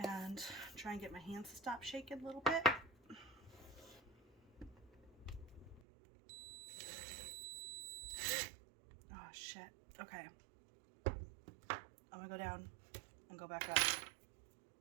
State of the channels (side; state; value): left; drops out; at 5.8 s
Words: try and get my hands to stop shaking a little bit. Oh shit. Okay. I'm gonna go down and go back up